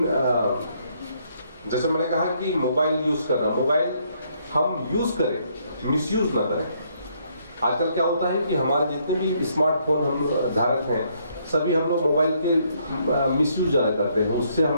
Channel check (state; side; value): inverted; both; correlation -0.70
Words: जैसे मैंने कहा कि मोबाइल यूज कर रहा, मोबाइल हम यूज करें, मिसयूज ना करें। आजकल क्या होता है कि हमारे जितने भी स्मार्टफोन हम धारक हैं, सभी हम लोग मोबाइल के मिसयूज ज़्यादा करते हैं, उससे